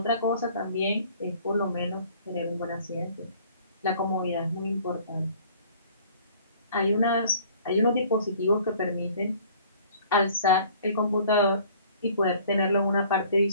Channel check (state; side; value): inverted; both; correlation -0.53